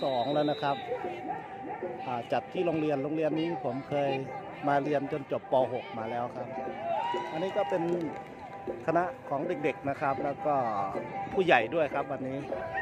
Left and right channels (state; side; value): identical; both; correlation 1.00